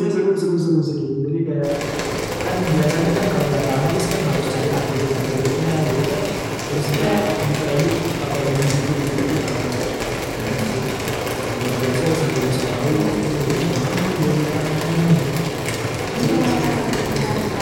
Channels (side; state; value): both; identical; correlation 1.00